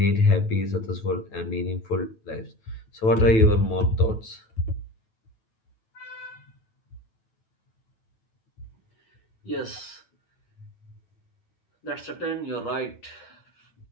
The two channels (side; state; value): right; late; 9.2 ms